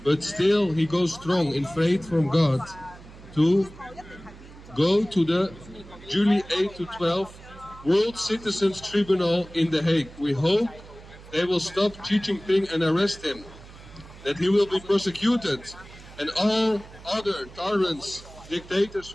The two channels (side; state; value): right; noise; hum, 19 dB below the sound